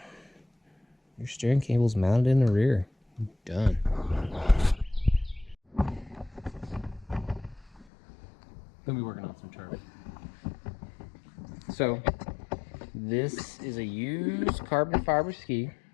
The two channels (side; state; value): right; drops out; at 7.9 s